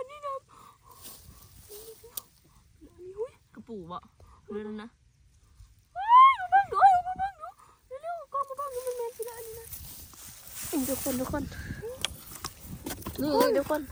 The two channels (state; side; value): identical; both; correlation 1.00